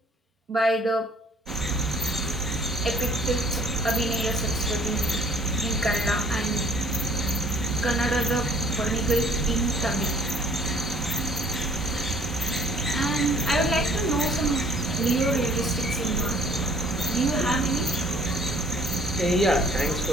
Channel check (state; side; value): normal; both; correlation 0.57